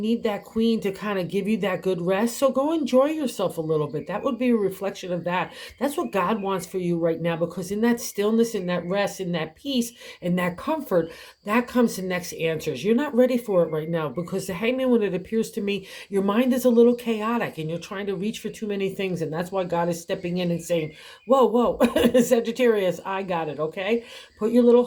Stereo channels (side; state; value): both; identical; correlation 1.00